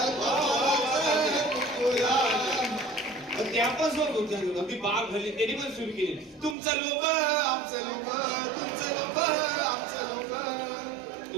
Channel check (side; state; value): left; drops out; at 6.6 s